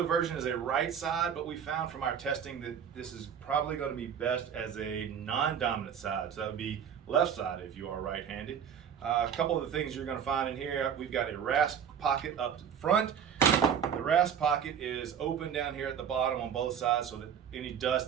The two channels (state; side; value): quieter; left; 8.1 dB